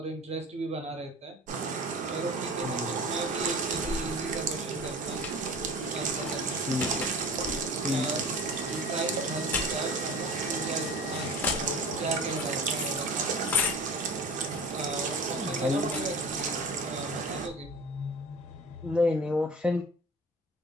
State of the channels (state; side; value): normal; both; correlation 0.38